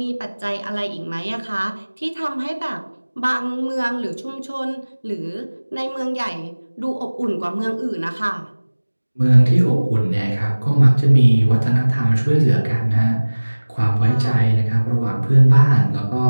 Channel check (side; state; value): both; inverted; correlation -1.00